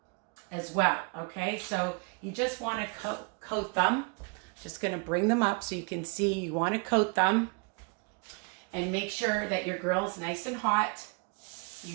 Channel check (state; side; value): quieter; left; 33.3 dB